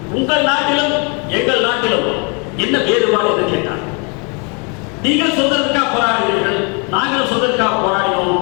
உங்கள் நாட்டிலும் எங்கள் நாட்டிலும் என்ன வேறுபாடு என்று கேட்டார். நீங்கள் சுதந்திரத்துக்காக போராடுகிறீர்கள், நாங்களும் சுதந்திரத்துக்காக போராடினோம்,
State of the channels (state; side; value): quieter; right; 34.1 dB